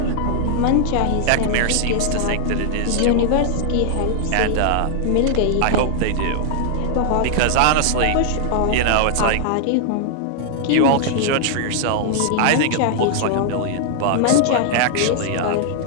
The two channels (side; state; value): both; different; correlation -0.01